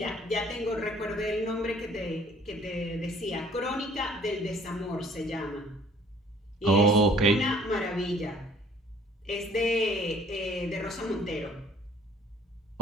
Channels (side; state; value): both; normal; correlation 0.56